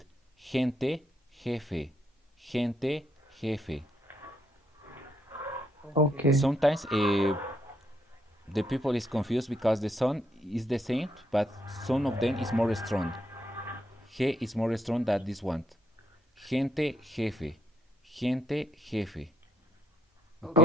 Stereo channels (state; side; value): normal; both; correlation 0.75